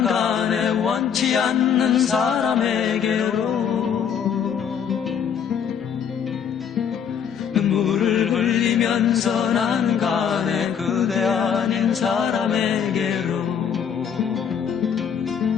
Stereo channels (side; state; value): right; quieter; 7.7 dB